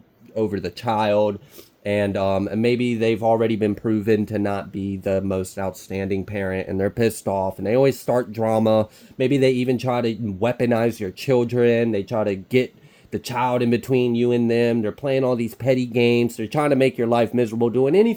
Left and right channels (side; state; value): both; identical; correlation 1.00